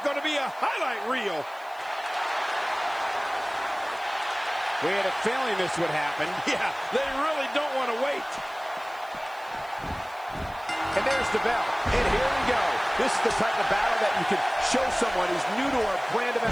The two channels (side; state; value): right; noise; hiss, 26 dB below the sound